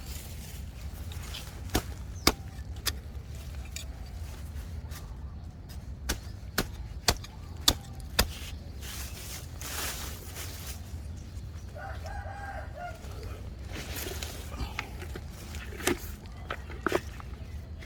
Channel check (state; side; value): identical; both; correlation 1.00